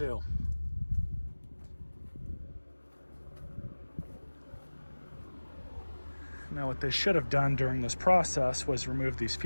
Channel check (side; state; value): both; inverted; correlation -1.00